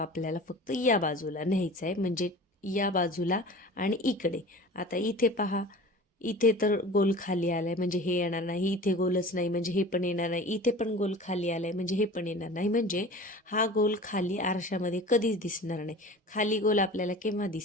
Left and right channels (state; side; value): normal; both; correlation 0.39